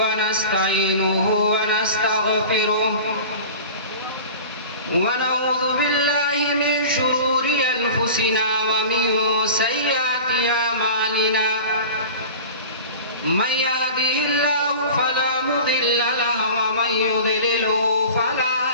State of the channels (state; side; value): inverted; both; correlation -0.37